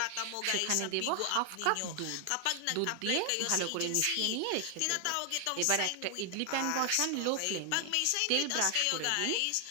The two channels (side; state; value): both; different; correlation 0.00